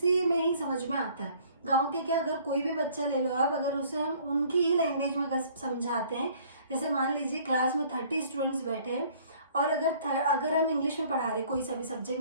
में ही समझ में आता है। गांव के क्या, अगर कोई भी बच्चा ले लो आप, अगर उसे हम उनकी ही लैंग्वेज में अगर समझाते हैं, जैसे मान लीजिए क्लास में 30 स्टूडेंट्स बैठे हैं और अगर हम इंग्लिश में पढ़ा रहे कोई सा भी सब्जेक्ट,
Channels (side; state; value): both; inverted; correlation -0.56